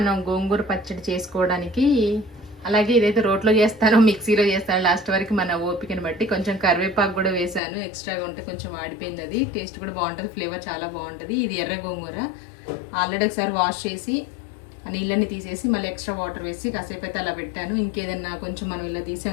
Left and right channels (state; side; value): drops out; right; at 7.6 s